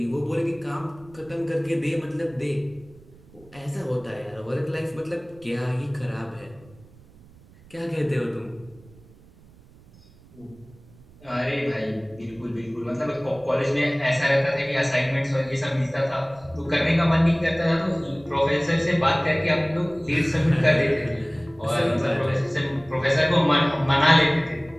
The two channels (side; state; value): right; noise; rumble, 24 dB below the sound